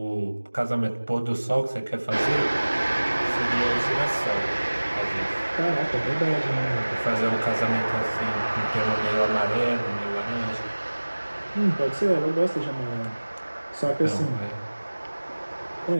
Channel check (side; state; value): both; inverted; correlation -1.00